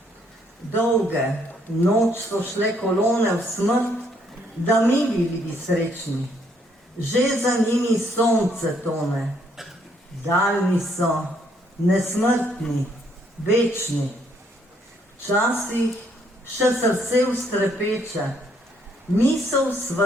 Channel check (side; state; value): both; normal; correlation 0.69